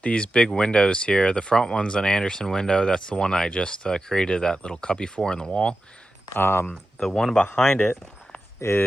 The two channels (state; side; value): normal; both; correlation 0.92